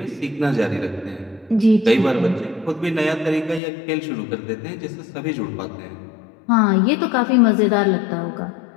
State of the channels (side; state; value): right; drops out; at 3.6 s